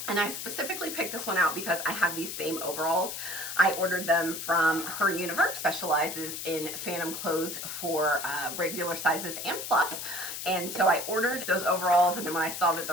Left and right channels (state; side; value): noise; left; hiss, 6 dB below the sound